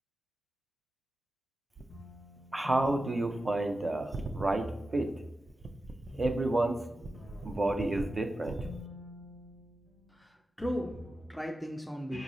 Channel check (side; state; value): both; normal; correlation 0.92